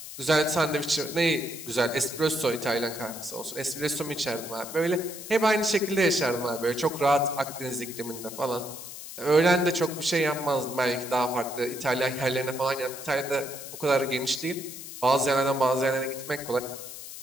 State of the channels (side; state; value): left; noise; hiss, 11 dB below the sound